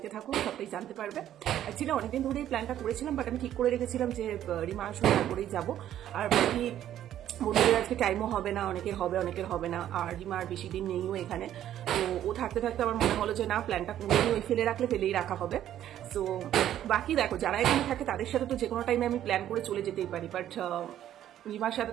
থাকো, সবটাই জানতে পারবে। অ্যাকচুয়ালি অনেকদিন ধরেই প্ল্যানটা করেছিলাম, বাট আমি ঠিক করে রেখেছিলাম যে রিমা আসলে তারপরেই যাবো। আর বাকি বন্ধুদের আজকে টাইমও হবে না, অনেকের হবে অনেকের হবে না। আর রিমা আর বেশি দিন নেইও এখানে, তো ও থাকতে থাকতে আমার মনে হলো যে না, প্ল্যানটা ওই ফেলে রাখলে ফেলেই রাখা হবে। সো বাকি দেখো, যারা এখানে থাকে তাদের সাথে তো যে কোনো টাইমে আমি প্ল্যান করে চলে যেতেই পারি, বাট রিমার সাথে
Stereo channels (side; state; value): left; quieter; 11.6 dB